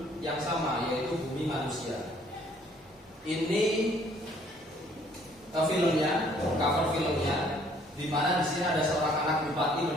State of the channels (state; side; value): normal; both; correlation 0.61